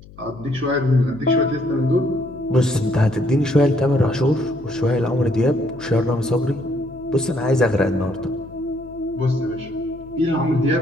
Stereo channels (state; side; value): noise; left; hum, 21 dB below the sound